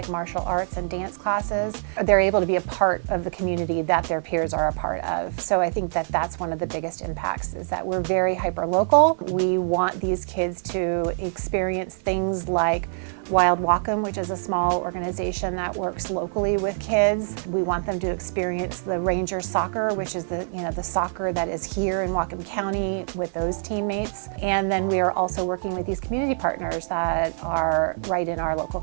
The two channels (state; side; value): silent; left; digital silence